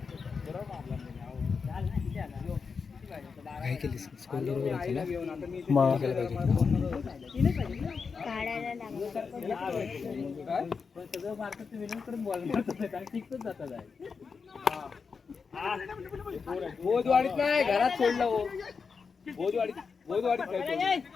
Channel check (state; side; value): quieter; right; 5.3 dB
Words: बोधवाडीत नाही घरात सोडलं हो. बोधवाडीत